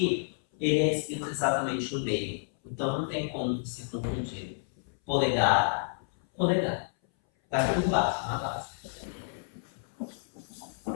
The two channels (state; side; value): silent; right; 58 dB below the other